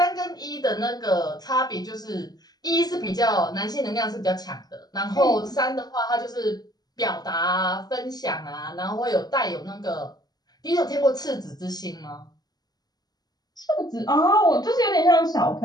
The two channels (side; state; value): right; late; 0.19 ms